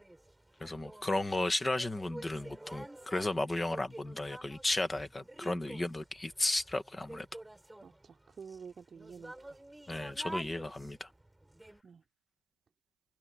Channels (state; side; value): normal; both; correlation 0.97